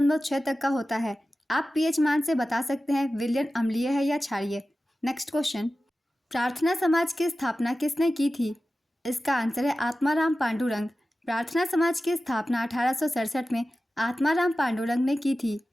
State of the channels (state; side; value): normal; both; correlation 0.95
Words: तक का होता है। आप पीएच मान से बता सकते हैं विलयन अम्लीय है या क्षारीय। नेक्स्ट क्वेश्चन, प्रार्थना समाज की स्थापना किसने की थी? इसका आंसर है आत्माराम पांडुरंग। प्रार्थना समाज की स्थापना 1867 में आत्माराम पांडुरंग ने की थी।